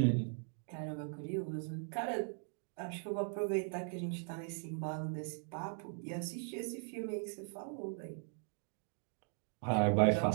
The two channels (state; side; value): silent; left; 51 dB below the other